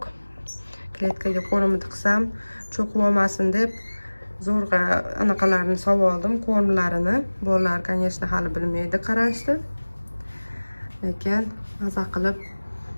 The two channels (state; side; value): inverted; both; correlation -1.00